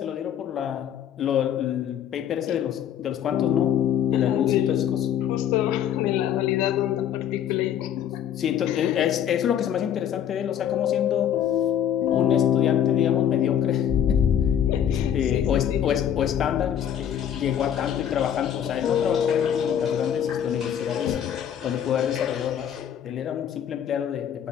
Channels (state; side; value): quieter; right; 9.6 dB